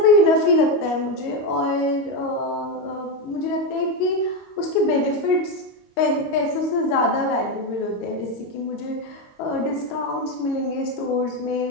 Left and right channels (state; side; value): late; right; 22 ms